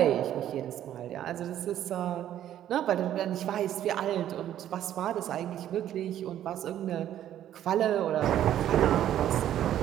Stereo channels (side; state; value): left; quieter; 11.5 dB